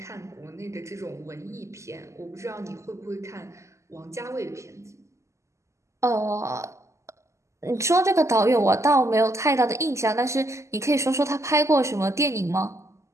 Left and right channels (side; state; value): left; late; 0.14 ms